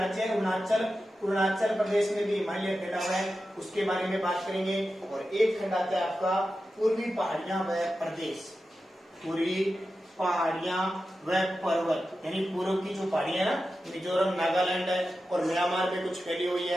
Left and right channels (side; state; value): both; normal; correlation 0.92